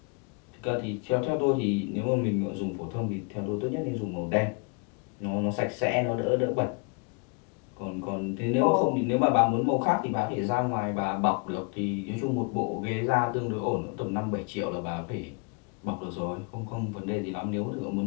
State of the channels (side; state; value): right; quieter; 33.9 dB